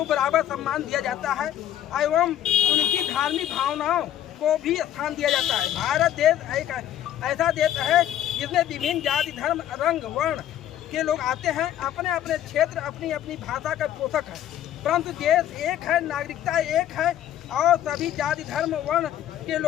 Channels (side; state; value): right; quieter; 11.5 dB